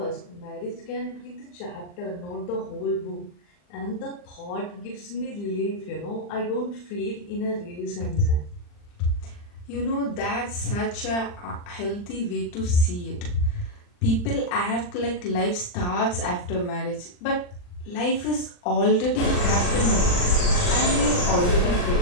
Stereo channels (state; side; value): late; right; 40 ms